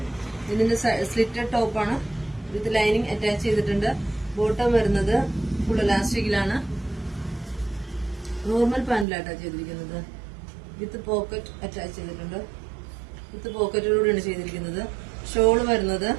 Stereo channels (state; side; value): drops out; left; at 9.1 s